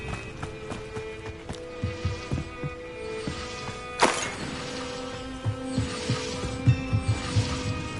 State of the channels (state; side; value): identical; both; correlation 1.00